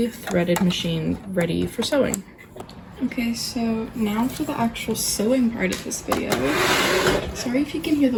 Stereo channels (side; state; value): both; identical; correlation 1.00